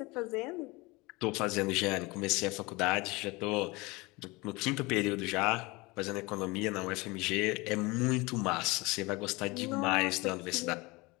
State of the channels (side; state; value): right; quieter; 24.1 dB